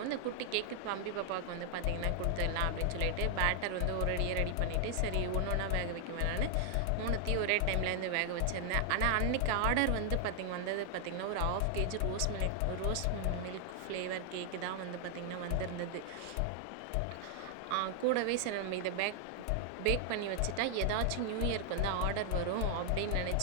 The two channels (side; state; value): both; different; correlation 0.00